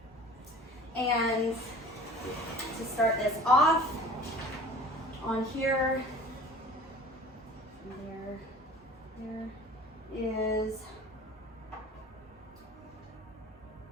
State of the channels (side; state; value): both; normal; correlation 0.44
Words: And to start this off, on here, there is